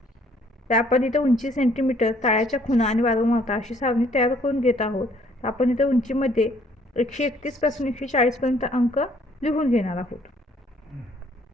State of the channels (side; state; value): both; normal; correlation 0.62